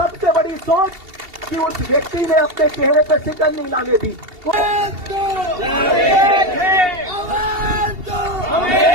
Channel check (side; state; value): left; late; 2.7 ms